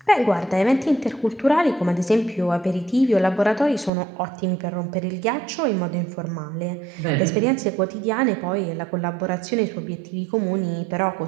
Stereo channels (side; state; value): left; drops out; at 3.9 s